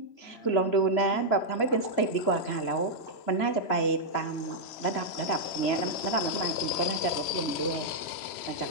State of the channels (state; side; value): late; right; 3.0 ms